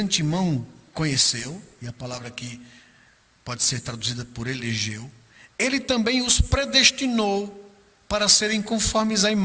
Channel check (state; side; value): identical; both; correlation 1.00